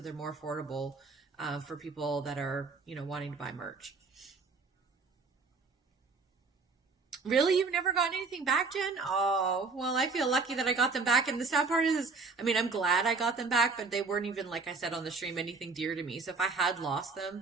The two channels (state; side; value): quieter; left; 4.3 dB